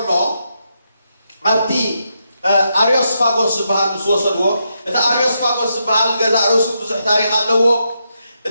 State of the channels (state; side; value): inverted; both; correlation -0.82